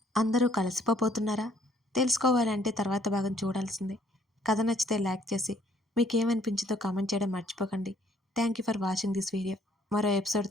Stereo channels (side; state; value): both; normal; correlation 0.63